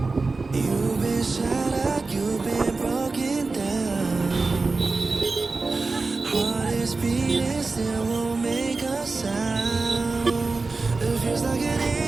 You've been shattered, you've been broken down. Heart is beating, still won't make a sound. It feels like an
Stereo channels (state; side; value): quieter; left; 3.8 dB